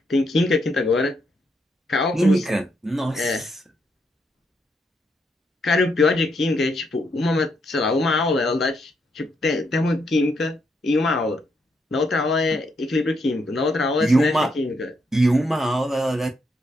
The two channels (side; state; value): both; normal; correlation 0.77